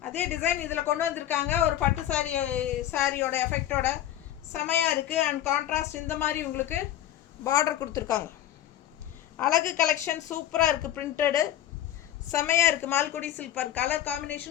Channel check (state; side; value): quieter; right; 12.1 dB